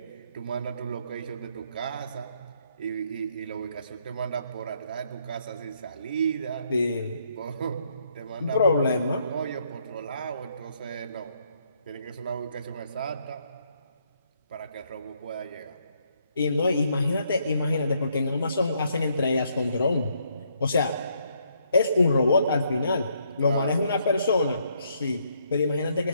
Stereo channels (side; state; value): both; inverted; correlation -0.72